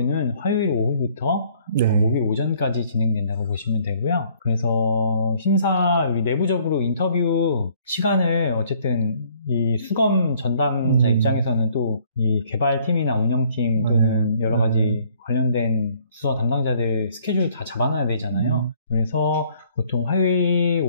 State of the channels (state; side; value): inverted; both; correlation -0.61